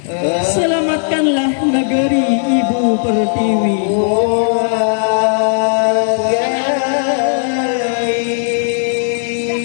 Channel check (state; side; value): silent; right; digital silence